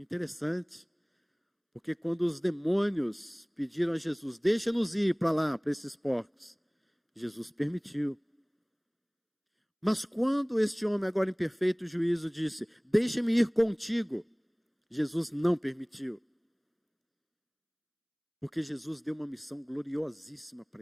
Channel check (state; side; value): identical; both; correlation 1.00